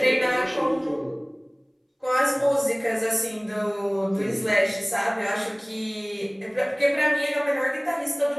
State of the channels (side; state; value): both; identical; correlation 1.00